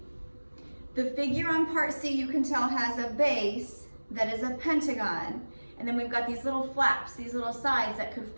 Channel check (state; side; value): inverted; both; correlation -1.00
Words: the figure on part C you can tell has a base that is a pentagon, and then we've got these little flaps, these little sides that could